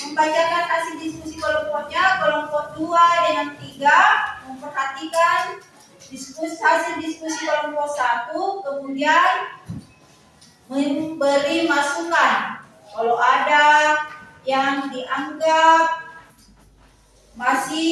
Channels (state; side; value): identical; both; correlation 1.00